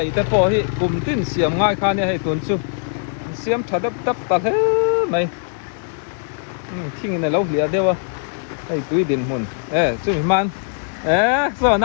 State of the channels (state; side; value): silent; right; digital silence